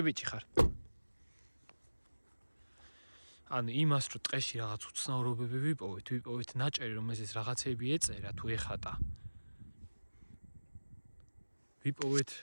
ბიჭი ხარ. ანუ იმას რომ ტყეში რაღაც უცნაურობები ვიპოვეთ ნაჭერი რომ ეს რაღაცეები ეწერა თუ ეხატა. ვიპოვეთ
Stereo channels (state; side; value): inverted; both; correlation -1.00